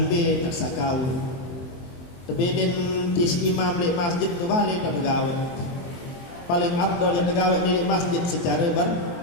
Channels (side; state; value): right; late; 23 ms